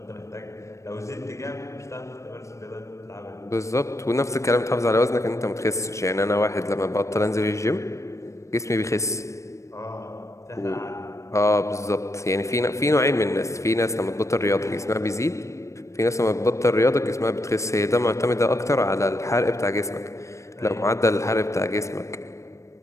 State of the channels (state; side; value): late; right; 0.15 ms